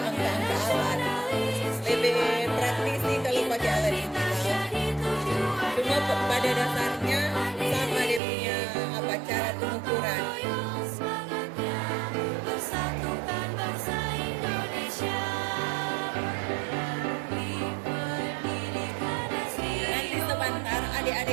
alat. Lebih praktis sih kalau pakai alat ini. Cuma pada dasarnya sama dia punya cara pengukuran. Nanti sebentar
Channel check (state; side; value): drops out; left; at 8.2 s